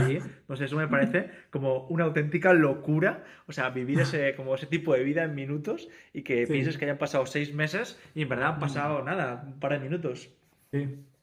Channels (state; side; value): identical; both; correlation 1.00